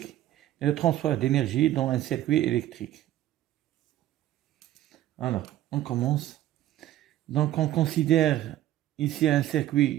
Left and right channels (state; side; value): quieter; left; 13.5 dB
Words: et le transfert d'énergie dans un circuit électrique. Alors, on commence. Donc on considère ici un